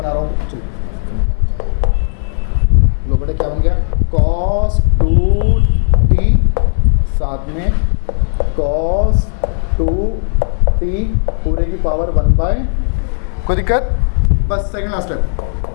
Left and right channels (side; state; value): right; silent; digital silence